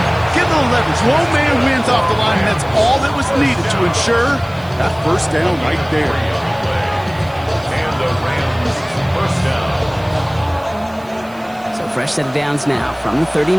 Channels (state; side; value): noise; right; hiss, 26 dB below the sound